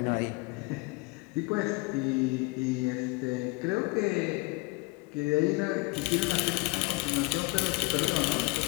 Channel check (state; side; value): quieter; right; 24.9 dB